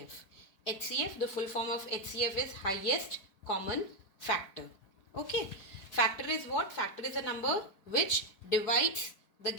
HCF, the full form of HCF is highest common factor. Okay. Factor is what? Factor is a number which divides the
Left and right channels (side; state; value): right; late; 4.7 ms